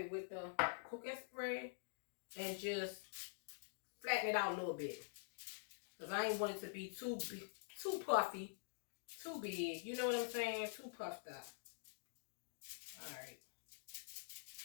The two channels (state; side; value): silent; right; digital silence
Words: with the cooking spray and just flatten it out a little bit. Because I ain't want it to be too big, too puffy, too big. You know what I'm saying? Too puffed up. Alright.